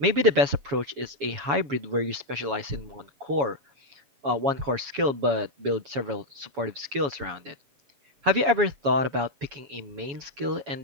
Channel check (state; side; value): late; left; 7.2 ms